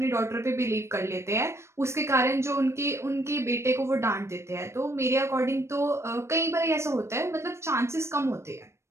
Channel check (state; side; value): late; left; 0.13 ms